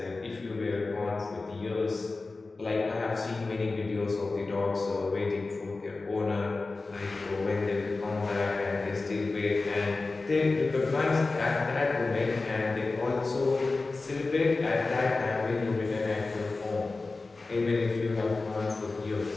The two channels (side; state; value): right; quieter; 3.6 dB